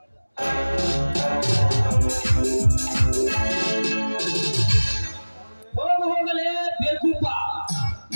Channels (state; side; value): inverted; both; correlation -1.00